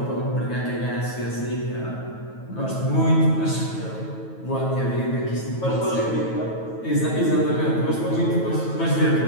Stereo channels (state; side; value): late; right; 9.2 ms